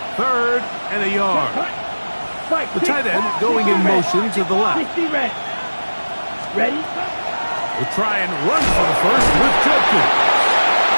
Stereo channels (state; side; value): inverted; both; correlation -1.00